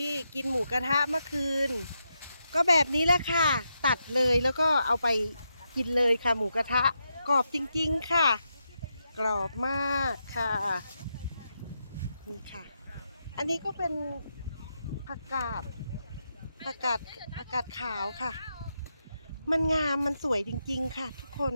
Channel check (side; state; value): both; inverted; correlation -0.84